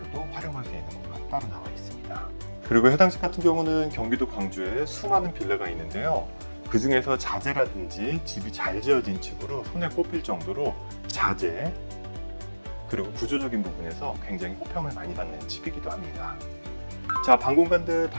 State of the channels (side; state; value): both; inverted; correlation -1.00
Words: 활용할 수 있는 공간 따로 나와 있습니다. 그리고 해당 집 같은 경우는 경기도 광주에 수많은 빌라가 있는데요. 그 중에서 자재라든지 집이 잘 지어진 집으로 손에 꼽힐 정도로 자재, 그리고 구조적인 부분에서 굉장히 호평을 많이 받는 집이기도 합니다. 자, 방 공간들